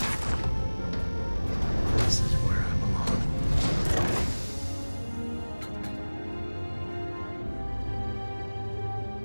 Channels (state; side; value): inverted; both; correlation -1.00